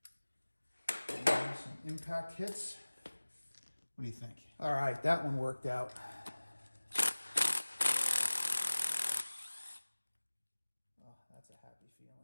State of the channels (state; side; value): inverted; both; correlation -1.00